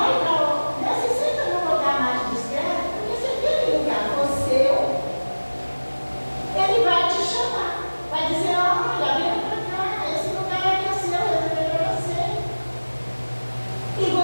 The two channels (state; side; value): inverted; both; correlation -1.00